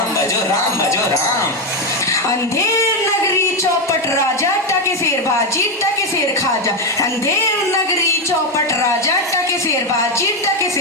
भजो राम भजो राम। अंधेर नगरी, चौपट राजा, टके सेर बाजी, टके सेर खाजा। अंधेर नगरी, चौपट राजा, टके सेर बाजी, टके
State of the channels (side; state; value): both; normal; correlation 0.08